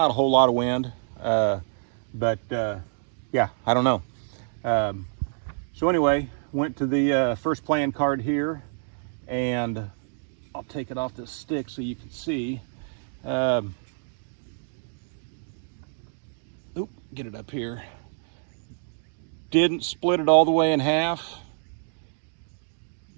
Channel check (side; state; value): left; silent; digital silence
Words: a whole lot of wind, but yeah, I don't know. So anyway, went to the first playing card here, and I'll take it off this stick so you can see. Oop, get it up here. Didn't split it all the way in half,